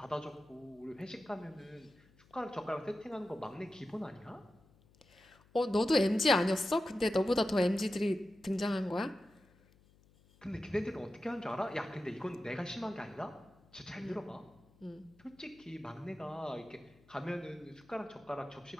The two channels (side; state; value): left; noise; hum, 29 dB below the sound